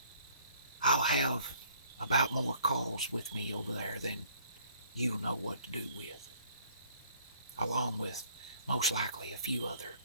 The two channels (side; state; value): both; inverted; correlation -0.59